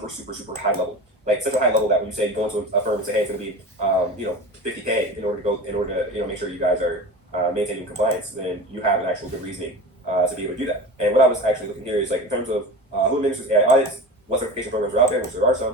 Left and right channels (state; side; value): normal; both; correlation 0.31